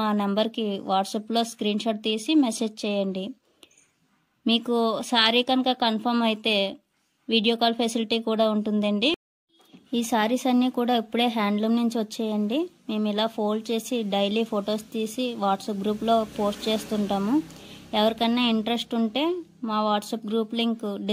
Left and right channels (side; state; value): both; identical; correlation 1.00